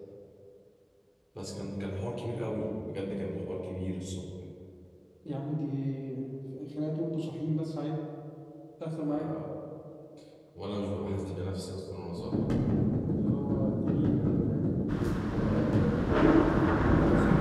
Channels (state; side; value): identical; both; correlation 1.00